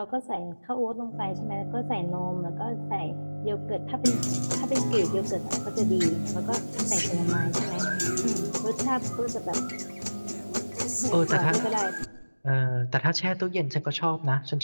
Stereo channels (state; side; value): inverted; both; correlation -1.00